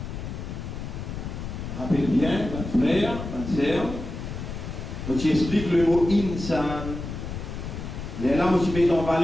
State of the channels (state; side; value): noise; left; rumble, 7 dB below the sound